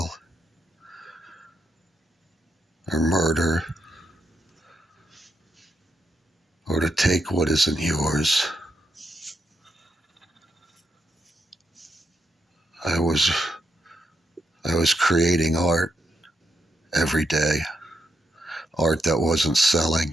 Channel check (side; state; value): both; normal; correlation 0.81